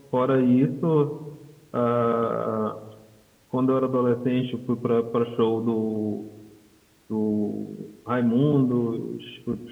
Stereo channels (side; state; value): both; identical; correlation 1.00